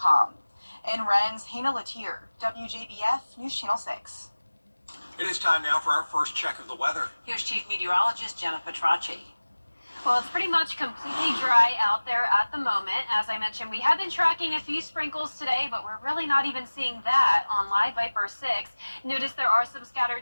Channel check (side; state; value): both; inverted; correlation -1.00